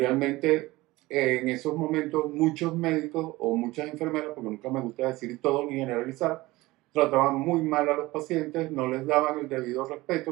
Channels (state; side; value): quieter; left; 19.8 dB